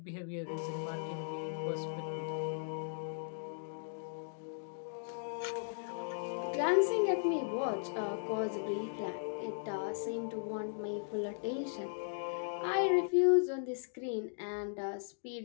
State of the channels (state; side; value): silent; right; digital silence